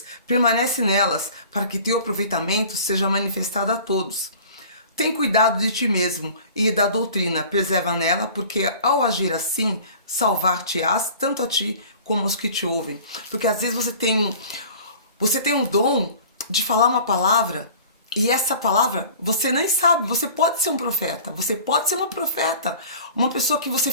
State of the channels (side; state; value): both; inverted; correlation -0.44